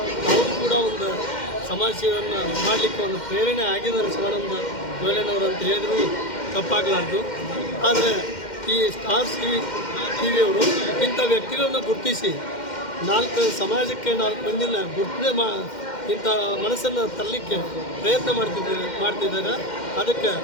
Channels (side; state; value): right; late; 2.1 ms